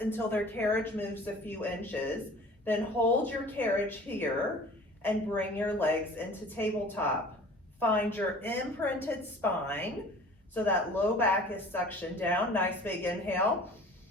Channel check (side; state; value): both; normal; correlation 0.45